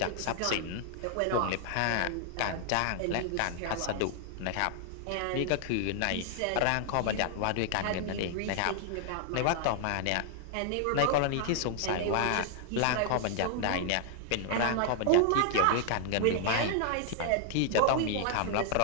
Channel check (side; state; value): both; different; correlation 0.00